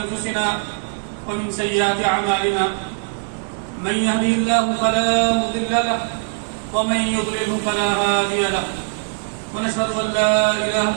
ومن سيئات أعمالنا من يهده الله فلا مضل له ومن يضلله فلا هادي له ونشهد أن لا إله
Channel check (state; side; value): silent; left; 65 dB below the other